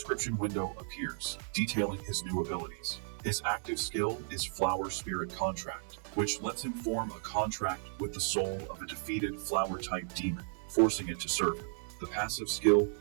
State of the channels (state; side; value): silent; left; 55 dB below the other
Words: window appears, detailing his new abilities. His active skill is Flower Spirit Contract, which lets him form a contract with the soul of a defeated flower-type demon, forcing it to serve him. The passive skill,